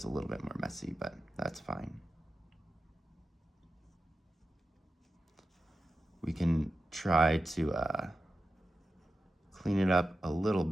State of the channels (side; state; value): both; normal; correlation 0.91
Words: a little bit more messy, but that's fine. We can try to clean it up a little